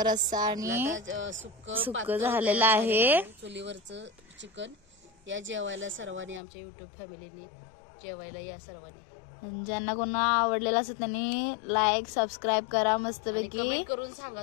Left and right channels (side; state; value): right; drops out; at 6.4 s